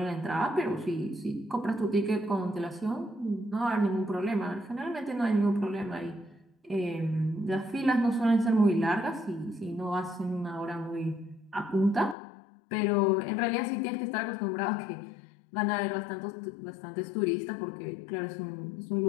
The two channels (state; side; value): drops out; right; at 12.2 s